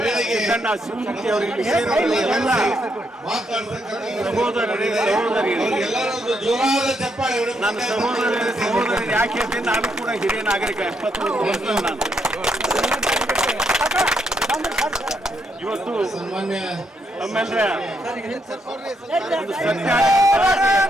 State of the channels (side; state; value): both; normal; correlation 0.77